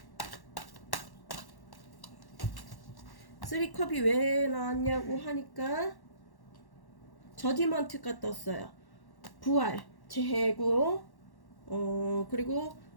쓰리컵이 왜 나왔냐고 하니까 저지먼트가 떴어요. 부활, 재고, 그리고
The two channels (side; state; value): right; late; 1.1 ms